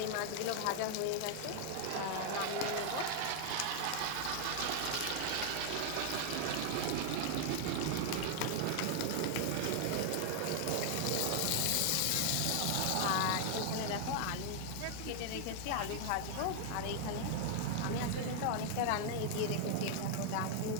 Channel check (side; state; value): both; different; correlation 0.00